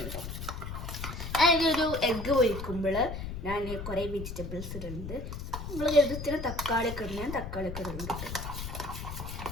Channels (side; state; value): left; noise; rumble, 7 dB below the sound